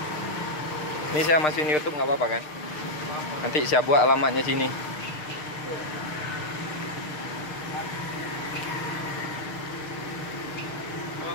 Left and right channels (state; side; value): late; right; 6.6 ms